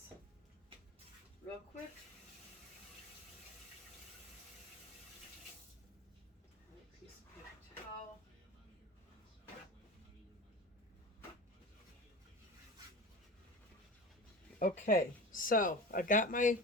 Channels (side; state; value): both; normal; correlation 0.32